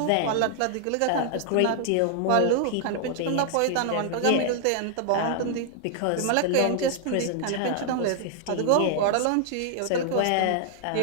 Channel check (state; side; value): different; both; correlation 0.00